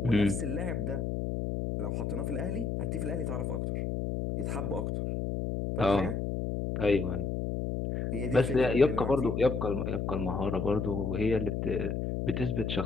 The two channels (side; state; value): left; noise; hum, 1 dB below the sound